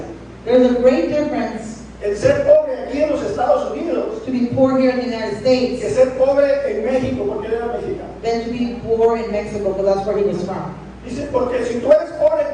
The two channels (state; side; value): identical; both; correlation 1.00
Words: there's a great difference en ser pobre aquí en los Estados Unidos to be poor here in the United que States ser pobre en México, porque él era mexicano. than to be poor in Mexico, because that's where he was from. Dice, porque si tú eres pobre